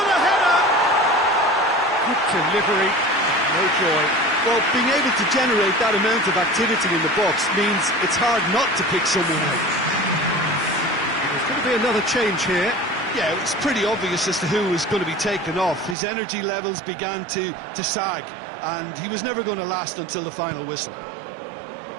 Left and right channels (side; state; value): left; drops out; at 16.0 s